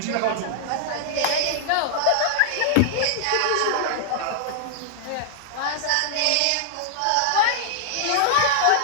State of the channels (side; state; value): both; different; correlation -0.01